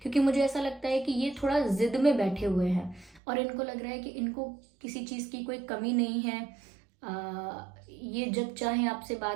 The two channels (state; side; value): drops out; left; at 3.2 s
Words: क्योंकि मुझे ऐसा लगता है कि ये थोड़ा जिद में बैठे हुए हैं और इनको लग रहा है कि इनको किसी चीज़ की कोई कमी नहीं है। ये जब चाहें आपसे